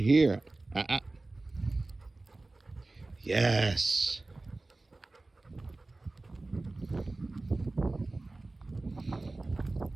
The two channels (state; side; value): quieter; left; 3.1 dB